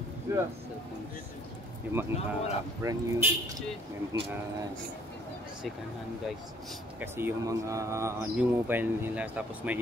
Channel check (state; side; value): normal; both; correlation 0.61